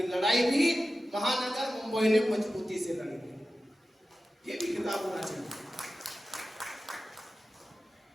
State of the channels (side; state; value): both; normal; correlation 0.94